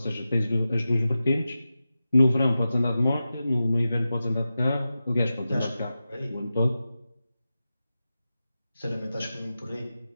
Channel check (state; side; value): inverted; both; correlation -0.93